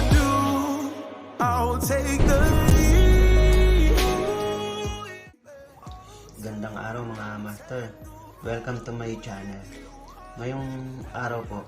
do. I'll take the lead. Gandang araw mga master. Welcome to my channel. Ngayong araw po,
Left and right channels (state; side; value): identical; both; correlation 1.00